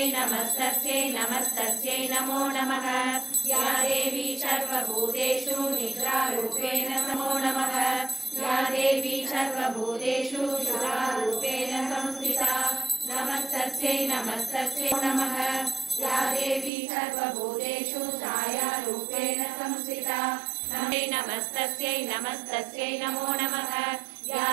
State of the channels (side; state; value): left; drops out; at 16.7 s